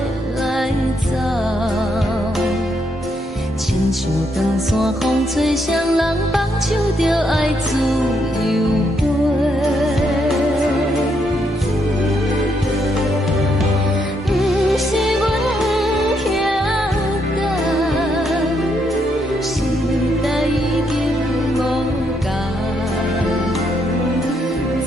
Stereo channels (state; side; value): normal; both; correlation 0.76